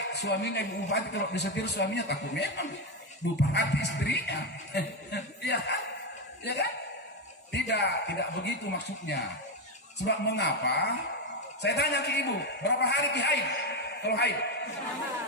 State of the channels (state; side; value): normal; both; correlation 0.10